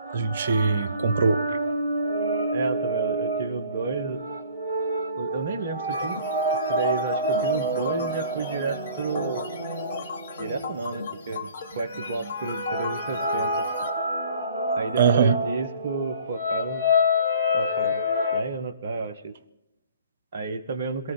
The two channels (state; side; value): inverted; both; correlation -0.52